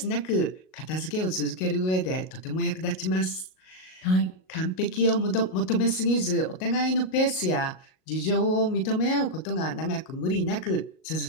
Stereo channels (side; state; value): right; late; 38 ms